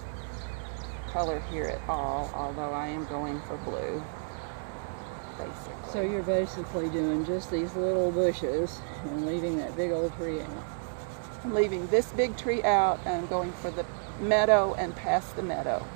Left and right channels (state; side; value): silent; left; digital silence